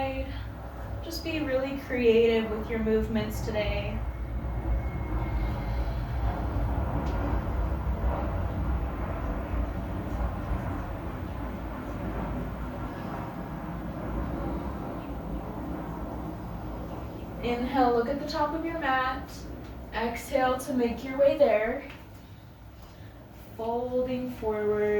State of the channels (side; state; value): both; identical; correlation 1.00